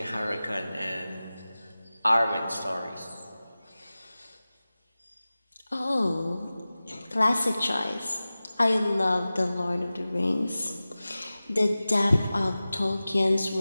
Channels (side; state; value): both; inverted; correlation -0.97